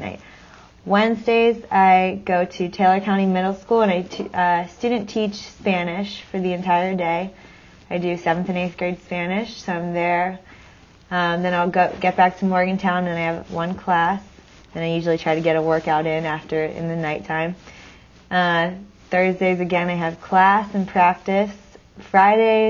Wednesdays I go to Taylor County Middle School and I student teach Spanish for the entire day. I do 7th and 8th grade Spanish, so I'm there. Then I'll get back to Morgantown and I have one class. And I usually try to get a workout in the nighttime. Thursdays again I have class and practice.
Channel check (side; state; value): both; identical; correlation 1.00